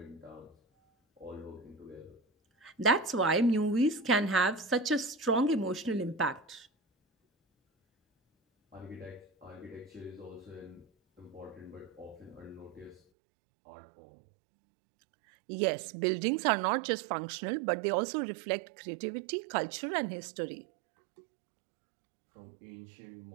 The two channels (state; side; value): drops out; left; at 13.0 s